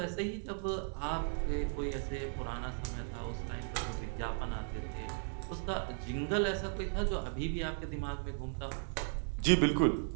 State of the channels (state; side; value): silent; left; 54 dB below the other